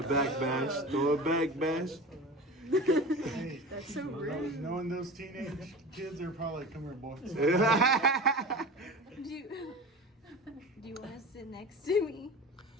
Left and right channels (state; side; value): normal; both; correlation 0.32